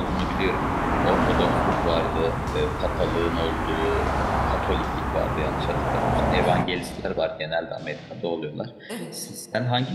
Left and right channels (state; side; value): identical; both; correlation 1.00